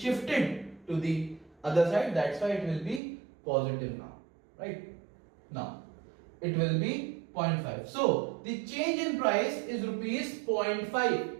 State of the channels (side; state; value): left; drops out; at 3.0 s